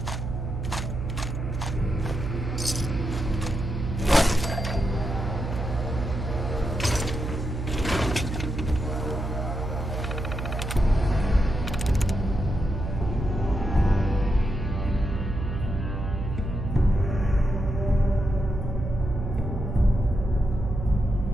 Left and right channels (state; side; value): noise; right; hum, 4 dB below the sound